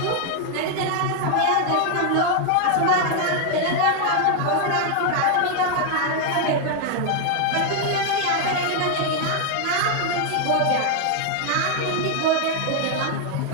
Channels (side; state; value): both; different; correlation 0.00